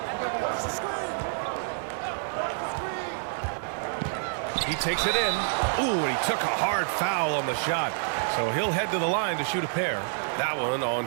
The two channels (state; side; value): silent; left; digital silence